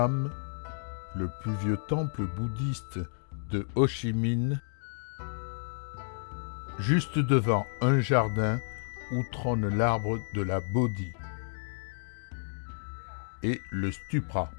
le plus vieux temple bouddhiste de Ho Chi Minh, juste devant un jardin où trône l'arbre de la Bodhi, et le Stupra,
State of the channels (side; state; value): right; silent; digital silence